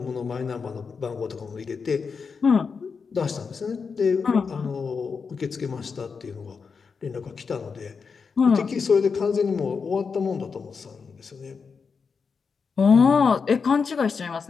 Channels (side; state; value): right; quieter; 5.4 dB